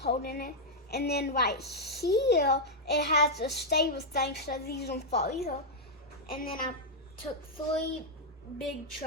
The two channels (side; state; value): both; normal; correlation -0.03